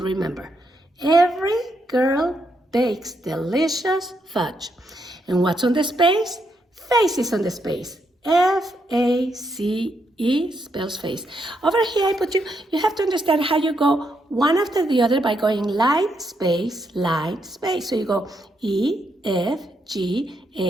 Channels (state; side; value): normal; both; correlation 0.79